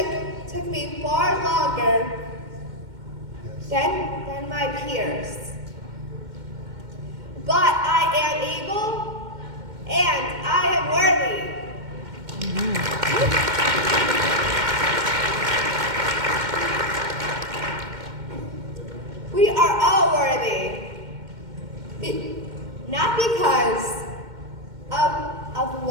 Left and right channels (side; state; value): left; late; 2.1 ms